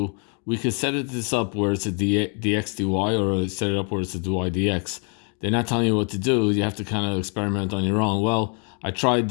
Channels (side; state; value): right; quieter; 39.4 dB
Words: we could set this up where it's a dx dy, or set it up where it's a dy dx. They're not telling you what to do. You have to kind of experiment on your own. Well, I tried